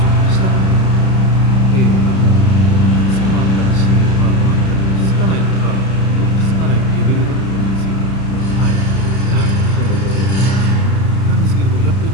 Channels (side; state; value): right; late; 31 ms